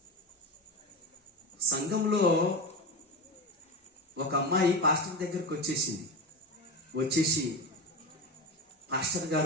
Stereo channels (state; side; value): normal; both; correlation 0.22